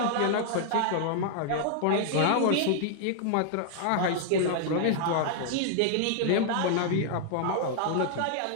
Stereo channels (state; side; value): different; both; correlation -0.01